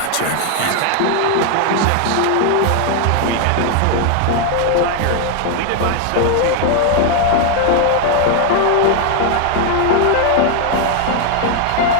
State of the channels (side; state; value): both; different; correlation 0.00